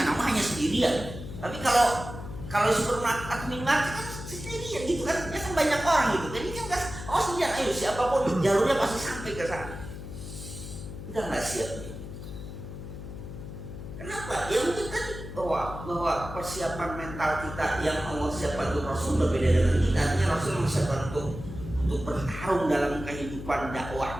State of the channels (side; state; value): left; noise; hum, 10 dB below the sound